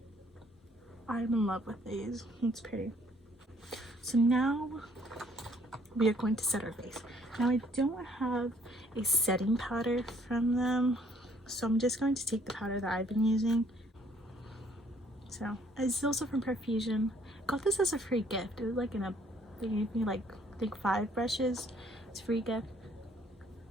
I'm in love with these. It's pretty. So now we are going to set our face. Now I don't have a setting powder from them, so I'm just going to take the powder that I've been using. So it's also from Profusion. Got this as a free gift. It was like they gave me like I think 5 brushes. It's a free gift.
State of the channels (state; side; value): normal; both; correlation 0.62